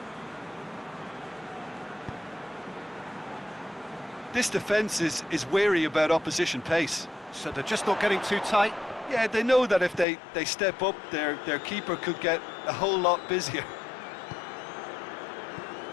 This defence is wary about opposition pace. So they're just not getting too tight. Yeah, they know that if they step up, their keeper could get a whole lot busier.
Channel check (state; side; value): drops out; right; at 10.1 s